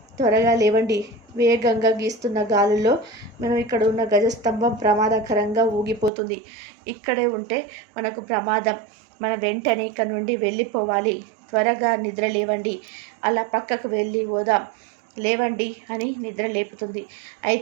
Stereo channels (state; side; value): drops out; left; at 6.1 s